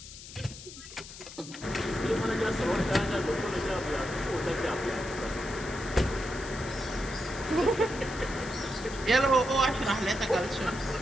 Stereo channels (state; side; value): noise; left; hiss, 14 dB below the sound